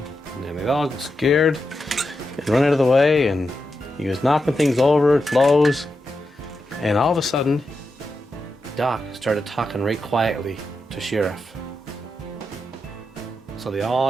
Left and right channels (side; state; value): both; normal; correlation 0.87